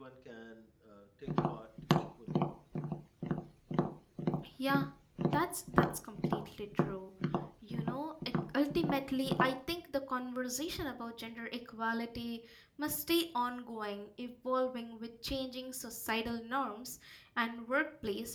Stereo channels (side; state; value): both; identical; correlation 1.00